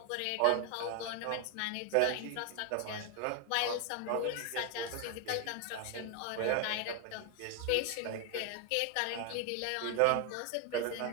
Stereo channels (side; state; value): both; different; correlation 0.01